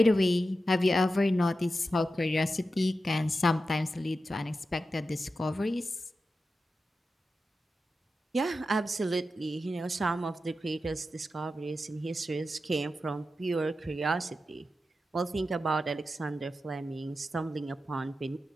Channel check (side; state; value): both; normal; correlation 0.91